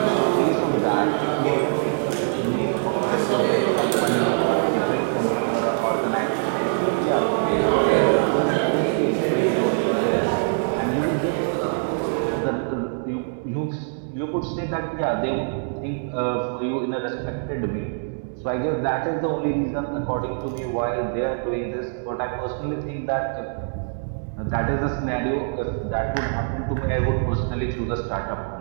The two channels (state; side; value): silent; left; digital silence